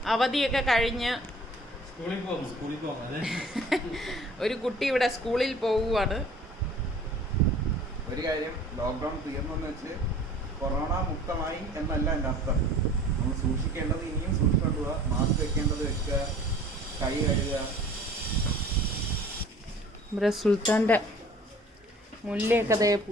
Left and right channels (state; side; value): normal; both; correlation 0.49